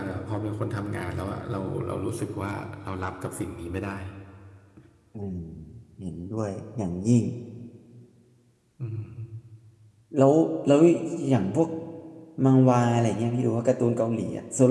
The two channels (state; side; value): identical; both; correlation 1.00